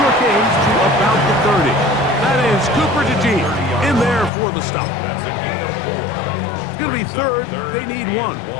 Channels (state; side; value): drops out; right; at 4.3 s